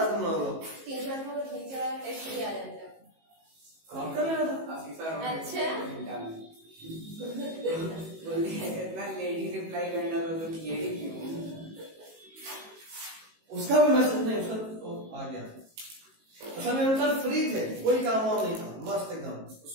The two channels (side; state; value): left; late; 18 ms